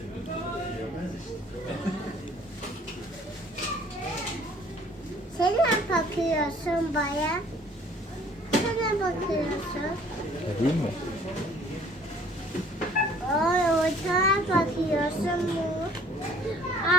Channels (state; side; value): normal; both; correlation 0.56